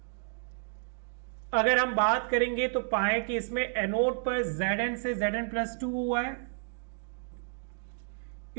अगर हम बात करेंगे तो पाए कि इसमें एनोड पर Zn से Zn+2 हुआ है,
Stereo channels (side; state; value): left; silent; digital silence